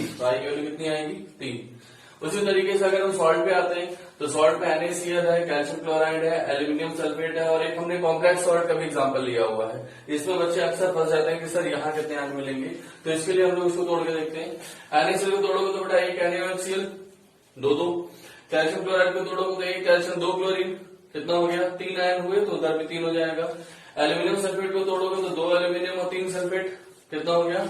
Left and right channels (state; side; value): identical; both; correlation 1.00